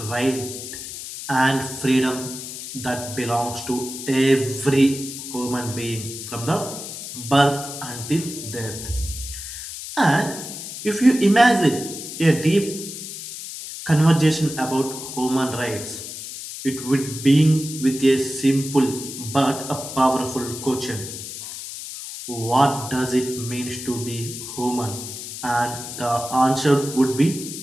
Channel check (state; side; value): noise; left; hiss, 9 dB below the sound